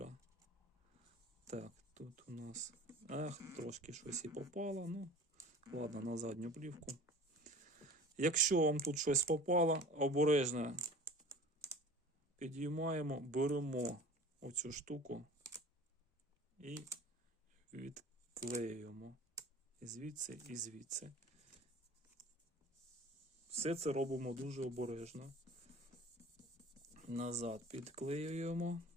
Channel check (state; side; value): normal; both; correlation 0.42